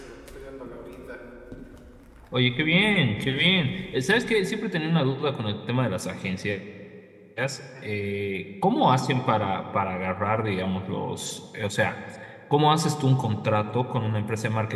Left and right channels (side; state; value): both; identical; correlation 1.00